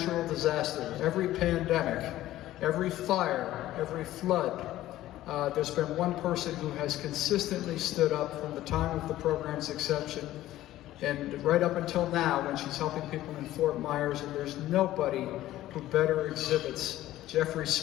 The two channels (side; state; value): right; quieter; 14.7 dB